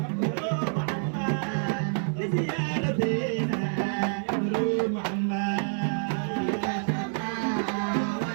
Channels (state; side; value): silent; left; digital silence